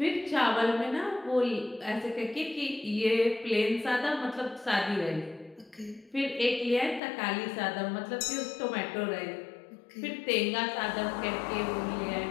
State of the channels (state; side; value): drops out; right; at 7.0 s